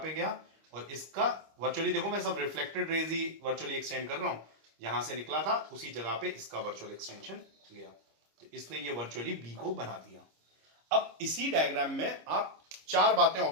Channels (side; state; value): left; late; 25 ms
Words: गया, और इसका वर्चुअली देखो मैं सब रिफ्लेक्टेड रेज ही वर्चुअली एक्सटेंड कर रहा हूं, यहां से निकला था उसी जगह पे इसका वर्चुअल एक्सटेंशन गया, तो इसने ये वर्चुअली बी को बना दिया। अब इसी डायग्राम में आप चार बातें